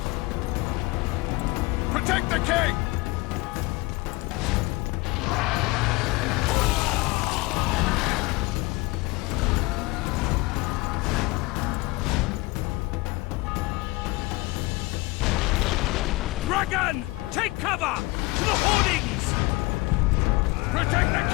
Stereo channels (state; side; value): quieter; right; 22.6 dB